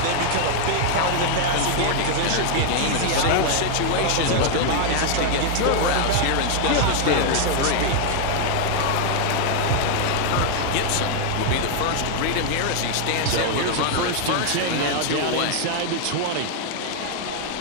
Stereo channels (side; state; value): both; different; correlation 0.00